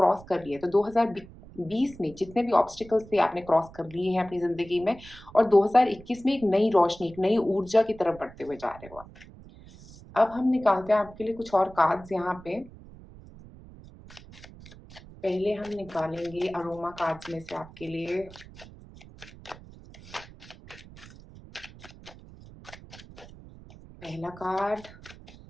कर लिए। तो 2020 में जितने भी ऑब्स्टिकल्स थे आपने क्रॉस कर लिए हैं अपनी ज़िंदगी में और 2021 में एक नई रोशनी, एक नई ऊर्जा की तरफ बढ़ते हुए जा रहे हो आप। अब हम निकालते हैं आपके लिए कुछ और कार्ड्स यहाँ पे। पहले हम निकालेंगे अरोमा कार्ड्स में से आपके लिए पहला कार्ड,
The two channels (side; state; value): right; noise; rumble, 19 dB below the sound